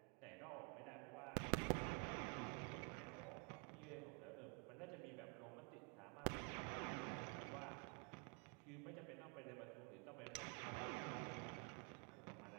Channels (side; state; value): left; quieter; 36.2 dB